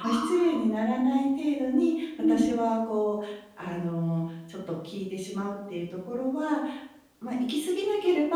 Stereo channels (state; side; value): identical; both; correlation 1.00